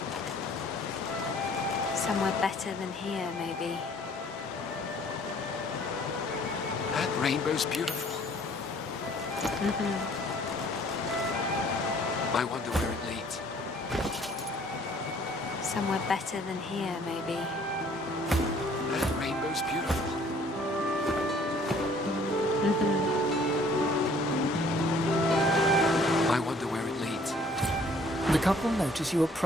Somewhere better than here, maybe. That rainbow's beautiful. I wonder where it leads. Somewhere better than here, maybe. That rainbow's beautiful. I wonder where it leads. The couple notice you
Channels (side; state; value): both; normal; correlation 0.57